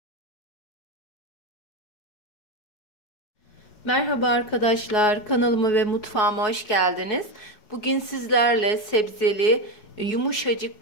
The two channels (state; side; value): late; right; 4.7 ms